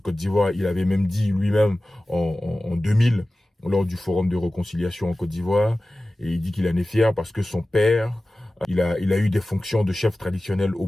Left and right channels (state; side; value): normal; both; correlation 0.96